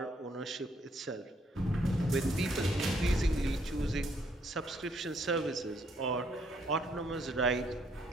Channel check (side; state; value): both; normal; correlation 0.69